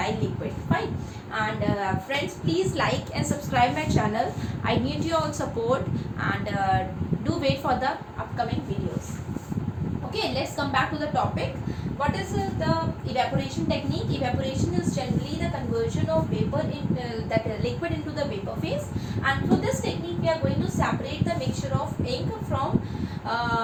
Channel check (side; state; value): both; identical; correlation 1.00